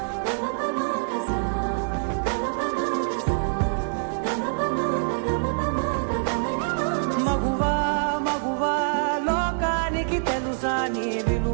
మగువా మగువా లోకానికి తెలుసా నీ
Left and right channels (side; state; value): left; silent; digital silence